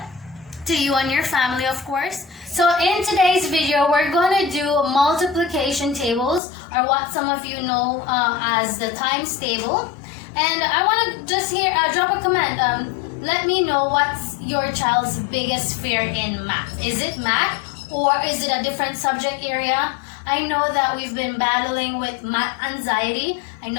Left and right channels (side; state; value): right; drops out; at 6.4 s